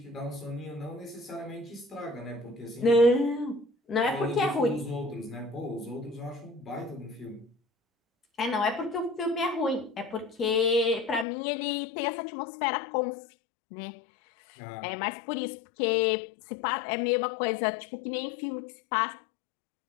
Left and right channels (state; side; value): drops out; right; at 11.2 s